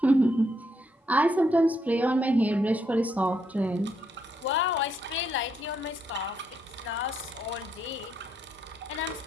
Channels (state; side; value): normal; both; correlation 0.76